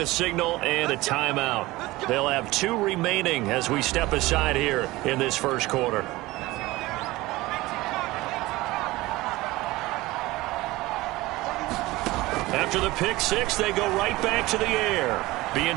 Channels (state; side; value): quieter; left; 19.5 dB